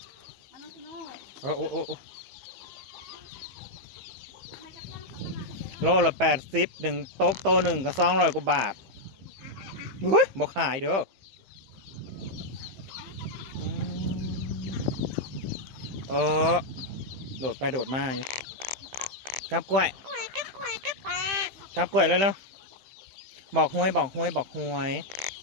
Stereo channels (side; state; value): left; late; 15 ms